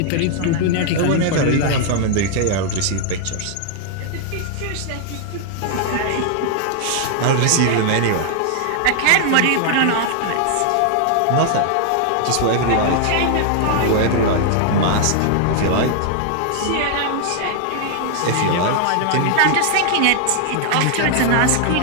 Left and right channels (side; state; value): both; different; correlation 0.00